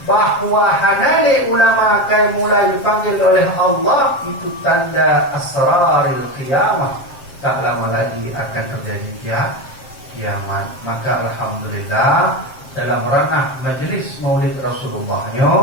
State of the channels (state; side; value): late; right; 7.6 ms